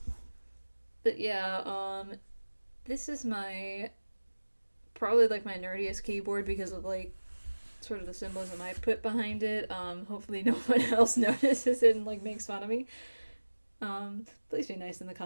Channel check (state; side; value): inverted; both; correlation -1.00